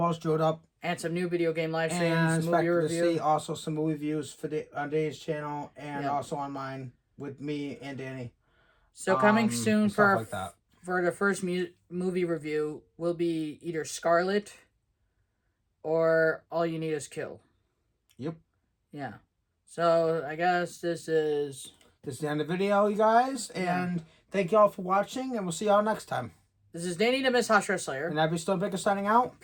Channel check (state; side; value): identical; both; correlation 1.00